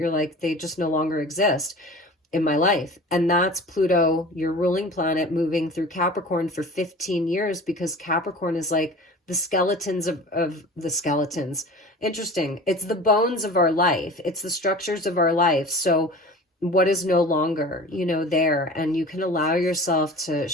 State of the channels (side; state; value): both; normal; correlation 0.39